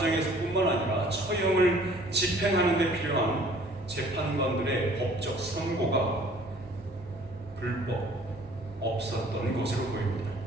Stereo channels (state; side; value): normal; both; correlation 0.54